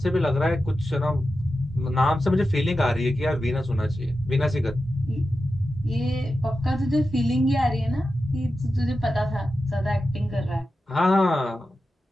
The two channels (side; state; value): both; normal; correlation 0.92